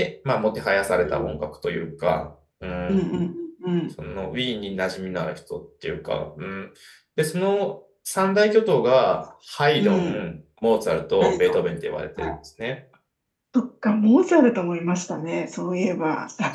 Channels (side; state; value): both; identical; correlation 1.00